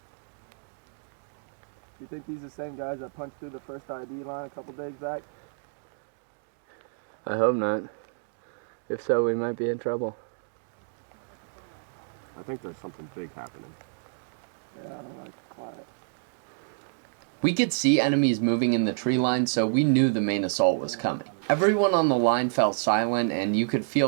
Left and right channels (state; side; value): silent; left; digital silence